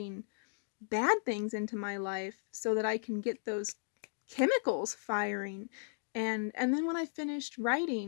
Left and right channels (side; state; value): right; silent; digital silence